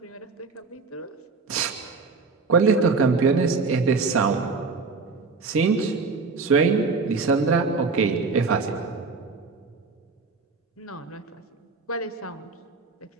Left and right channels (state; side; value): quieter; left; 4.4 dB